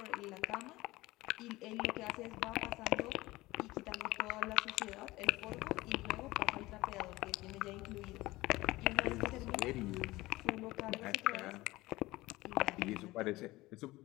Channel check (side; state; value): right; quieter; 19.2 dB